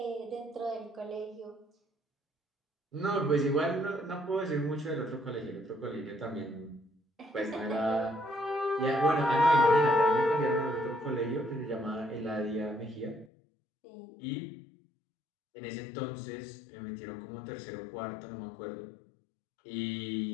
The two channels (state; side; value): drops out; right; at 13.3 s